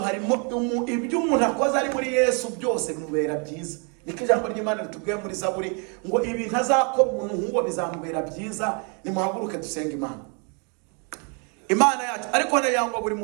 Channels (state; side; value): quieter; left; 36.4 dB